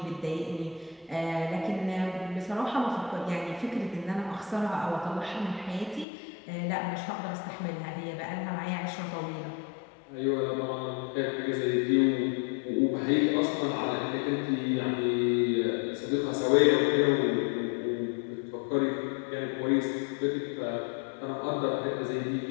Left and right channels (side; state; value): right; drops out; at 6.1 s